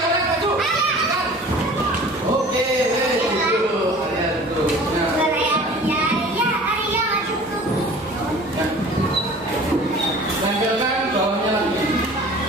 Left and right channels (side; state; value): both; normal; correlation 0.45